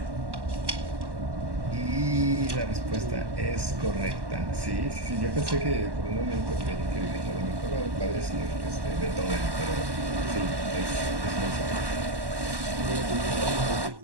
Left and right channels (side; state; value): left; late; 1.1 ms